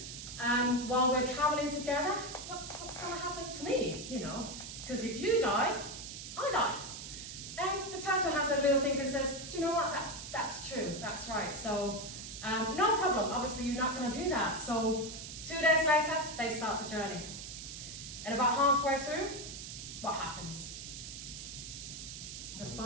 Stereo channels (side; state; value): right; noise; hiss, 9 dB below the sound